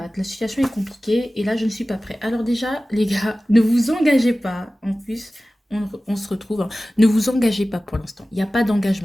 La situation est compliquée et là, je ne suis pas prêt. Alors déjà, les gars, ne vous engagez pas. En plus, on se retrouve, hein. Ne vous engagez pas pour l'instant. Il n'y a pas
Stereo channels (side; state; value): both; normal; correlation 0.96